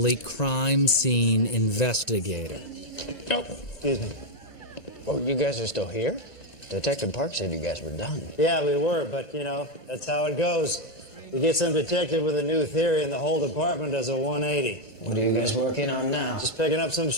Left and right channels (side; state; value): right; late; 1.9 ms